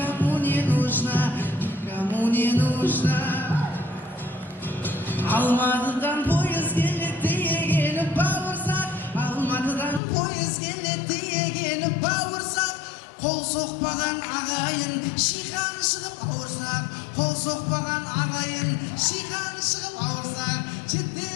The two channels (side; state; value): right; drops out; at 10.0 s